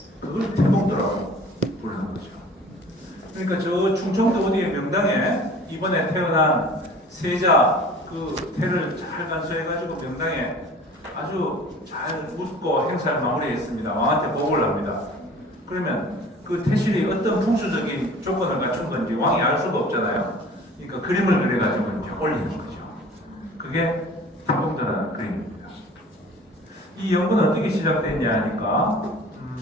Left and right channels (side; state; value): both; normal; correlation 0.46